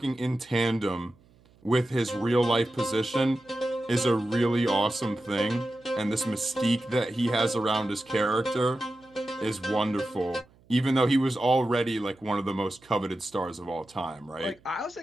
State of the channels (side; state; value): right; noise; hum, 30 dB below the sound